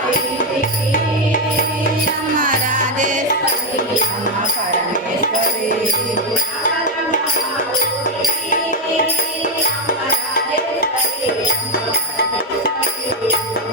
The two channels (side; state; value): both; normal; correlation 0.04